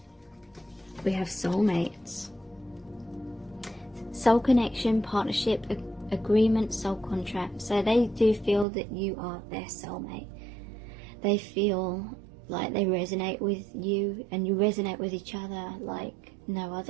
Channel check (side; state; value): left; drops out; at 8.7 s